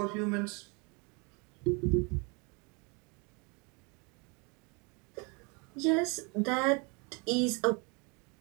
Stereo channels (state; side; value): quieter; left; 31.4 dB